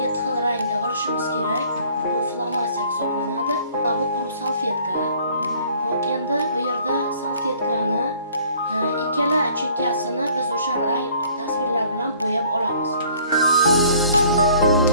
xil rangda olishimiz kerak. Bu flomaster hisoblanadi. Bu quruq salfetka. Hop, endi bu yerda salfetkani ikkala chekkasini biz o'sha rang tasvirlar bilan bo'yab olamiz.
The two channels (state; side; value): inverted; both; correlation -0.56